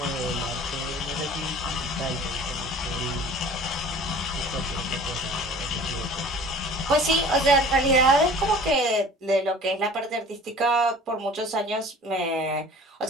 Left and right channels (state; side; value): normal; both; correlation 0.45